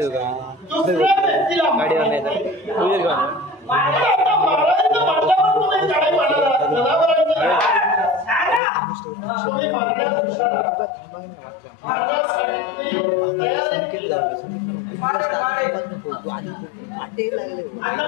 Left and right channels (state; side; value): drops out; right; at 8.6 s